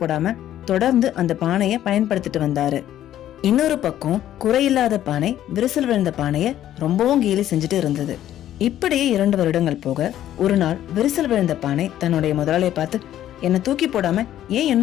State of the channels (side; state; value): right; quieter; 12.1 dB